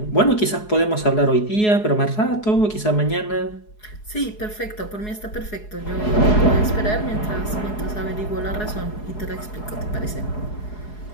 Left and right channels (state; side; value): late; right; 4.8 ms